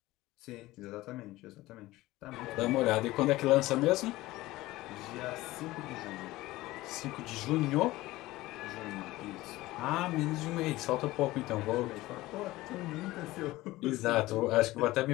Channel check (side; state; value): right; quieter; 18.2 dB